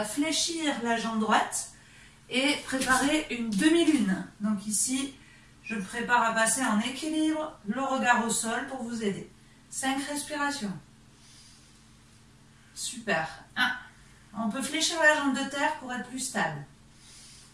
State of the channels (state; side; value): identical; both; correlation 1.00